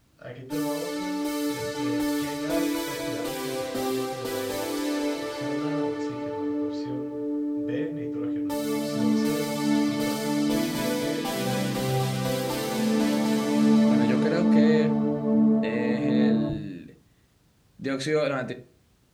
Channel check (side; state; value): both; identical; correlation 1.00